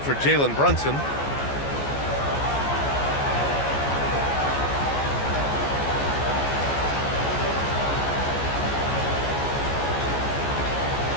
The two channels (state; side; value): late; right; 14 ms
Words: for Jalen Brunson.